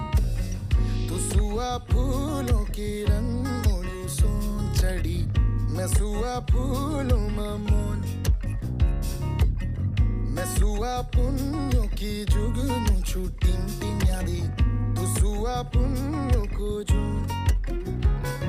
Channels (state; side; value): identical; both; correlation 1.00